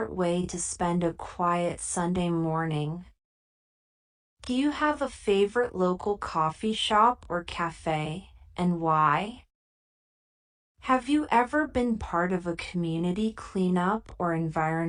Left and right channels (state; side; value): identical; both; correlation 1.00